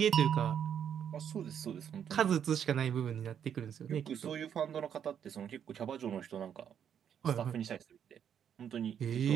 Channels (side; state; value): left; quieter; 8.6 dB